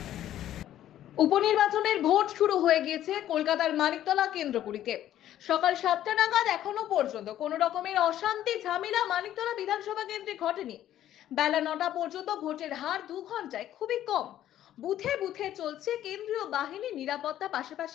উপনির্বাচনের ভোট শুরু হয়ে গিয়েছে কলকাতার মানিকতলা কেন্দ্রগুলিতে। সকাল 7টা নাগাদ এখনো পর্যন্ত কোনো রকমের অশান্তি ঝামেলা মানিকতলা বিধানসভা কেন্দ্রে ঘটেনি। বেলা 9টা পর্যন্ত ভোটের হার 2 ঘন্টায় খুবই কম। বুথে বুথে চলছে কেন্দ্রীয় বাহিনী নিরাপত্তা,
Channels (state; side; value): quieter; right; 12.1 dB